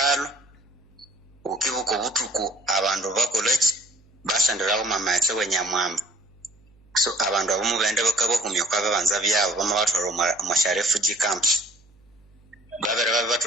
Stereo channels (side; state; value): right; noise; hum, 29 dB below the sound